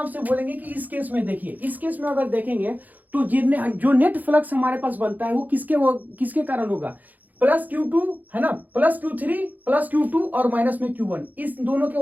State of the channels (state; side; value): late; left; 0.082 ms